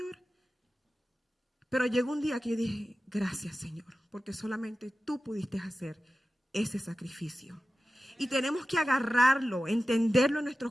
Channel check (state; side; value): normal; both; correlation 0.94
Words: Pero llegó un día que yo dije, gracias, Señor, porque solamente tú pudiste hacer ese sacrificio. Y tenemos que agarrarlo, entenderlo en